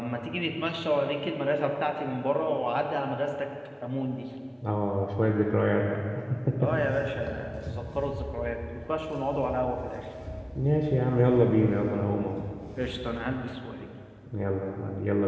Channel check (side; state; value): both; identical; correlation 1.00